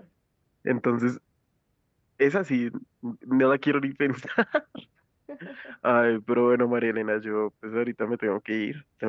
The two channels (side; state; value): both; identical; correlation 1.00